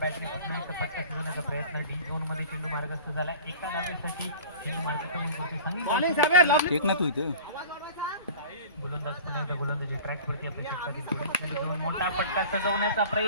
पुन्हा एकदा फटका शिजवण्याचा प्रयत्न. डी झोन मध्ये चेंडू मार्गस्थ झालाय. एका धावेसाठी चेंडू मार्ग करून सांगितलं. गोलंदाज पुन्हा एकदा गोलंदाजी ट्रॅक वरती आपल्या क्षेत्रातील पुढील चेंडू घेऊन मोठा फटका सजवण्याचा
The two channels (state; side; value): inverted; both; correlation -0.40